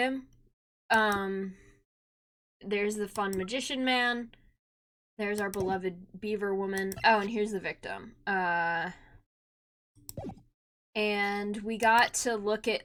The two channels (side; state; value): both; identical; correlation 1.00